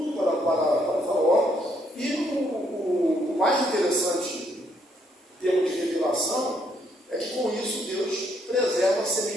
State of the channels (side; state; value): both; normal; correlation 0.72